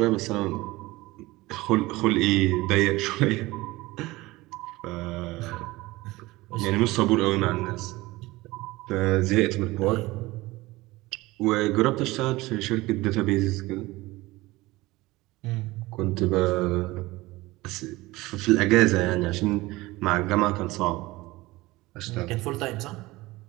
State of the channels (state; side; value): quieter; left; 20.1 dB